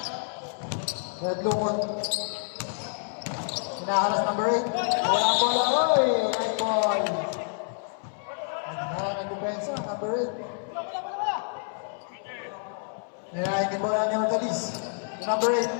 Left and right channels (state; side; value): silent; right; 59 dB below the other